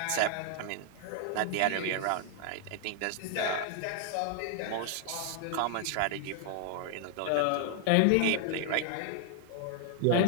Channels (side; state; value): both; different; correlation 0.00